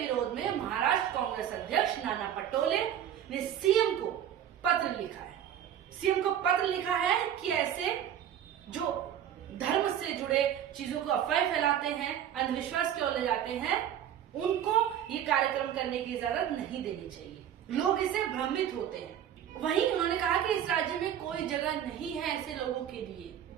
में महाराष्ट्र कांग्रेस अध्यक्ष नाना पटोले ने सीएम को पत्र लिखा है। सीएम को पत्र लिखा है कि ऐसे जो धर्म से जुड़े चीजों को अफवाह फैलाते हैं, अंधविश्वास की ओर ले जाते हैं, उनको ये कार्यक्रम करने की इजाजत नहीं देनी चाहिए। लोग इससे भ्रमित होते हैं। वहीं उन्होंने कहा कि इस राज्य में कोई जगह नहीं है ऐसे लोगों के लिए।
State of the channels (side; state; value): left; quieter; 10.1 dB